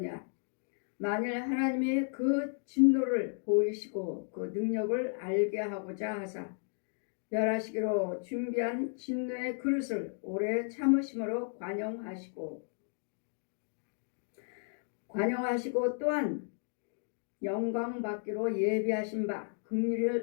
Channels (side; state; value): right; silent; 55 dB below the other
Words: 만일 하나님이 그 진노를 보이시고 그 능력을 알게 하고자 하사 멸하시기로 준비한 진노의 그릇을 오래 참으심으로 관용하시고 또한 영광 받기로 예비하신 바